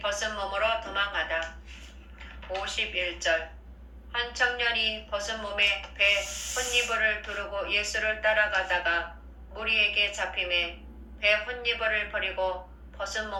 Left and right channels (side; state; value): both; identical; correlation 1.00